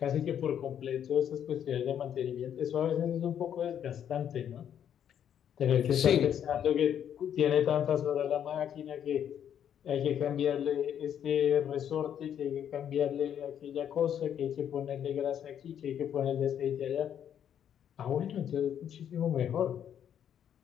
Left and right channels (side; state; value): right; quieter; 9.4 dB